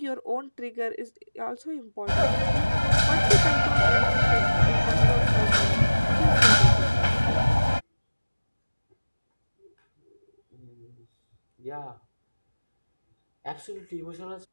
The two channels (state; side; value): inverted; both; correlation -1.00